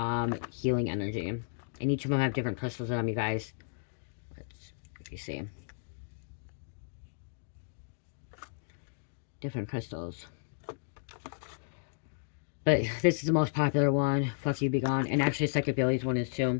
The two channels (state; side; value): silent; right; digital silence